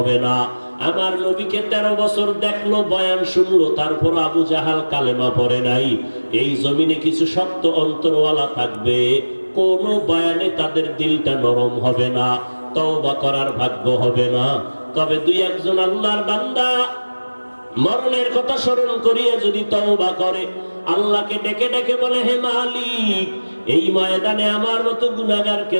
না। আমার নবীকে 13 বছর দেখলো, বয়ান শুনলো, তারপর আবু জাহাল কালেমা পড়ে নাই। এই জমিনে কিছু শক্ত অন্তরওয়ালা থাকবে, কোন বয়ানে তাদের দিলটা নরম হবে না, তওবা করার ভাগ্য হবে না। তবে 2-1 আল্লাহর বান্দা মরণের কথা স্মরণ করিয়া যদি তওবা করে, আল্লাহকে ডেকে ডেকে বলে, হে মালিক, এই ময়দানে আমার মতো গুনাহগার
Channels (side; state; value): both; inverted; correlation -1.00